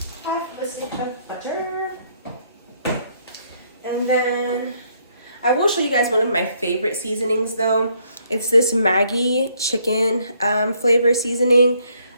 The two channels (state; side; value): inverted; both; correlation -0.70